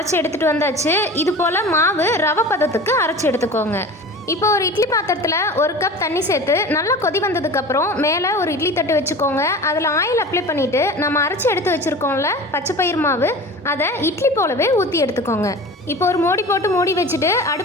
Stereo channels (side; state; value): both; normal; correlation 0.36